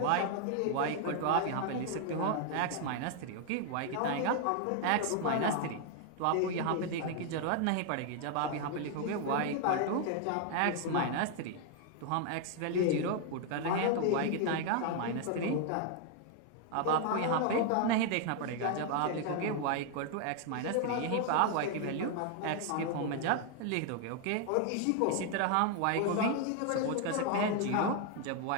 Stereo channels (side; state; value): both; different; correlation 0.00